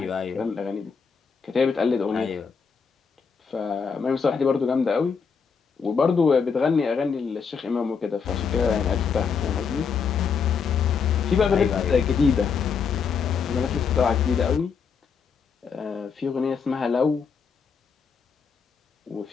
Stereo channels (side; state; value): right; quieter; 5.9 dB